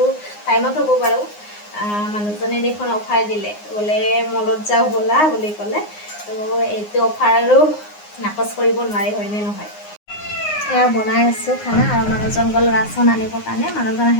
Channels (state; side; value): late; right; 9.7 ms